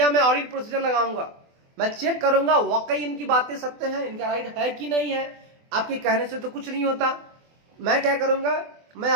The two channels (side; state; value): left; late; 24 ms